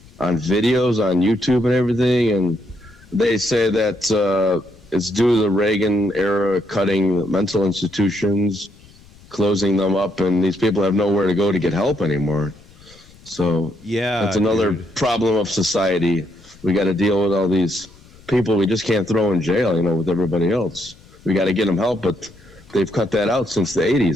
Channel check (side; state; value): left; noise; rumble, 25 dB below the sound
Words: on videos on YouTube and everything, and they say that it's due to the Reagan era cutting mental institutions, closing them up, and these people have nowhere to go to get help anymore. So that's another problem of society. We got to deal with all these people we just can't throw in jail, with everybody else. We got to get them help, but they've cut that out since the